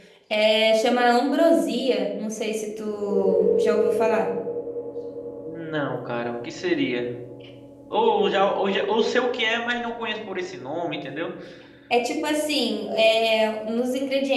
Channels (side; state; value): both; identical; correlation 1.00